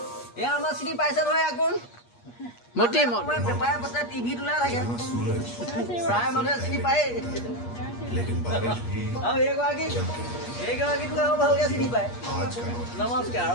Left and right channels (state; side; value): late; right; 8.4 ms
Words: এয়া আমাৰ চিনি পাইছে নহয় আকৌ মতি পেপাৰে পত্ৰে টিভিত ওলাই থাকে প্ৰায় মানুহে চিনি পায় আৰু এইগৰাকীটো আৰু ভালকৈ চিনি পায় নমস্কাৰ